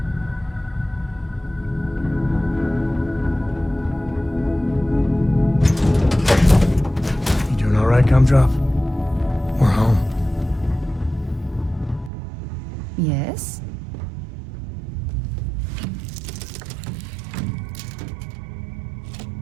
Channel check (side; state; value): left; drops out; at 12.1 s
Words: Gumdrop. We're home. Yes?